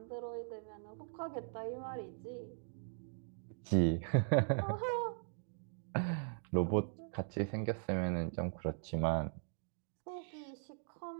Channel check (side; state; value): left; silent; digital silence